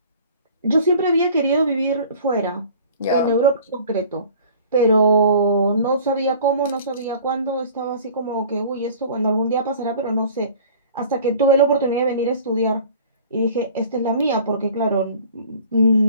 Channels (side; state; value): both; inverted; correlation -0.47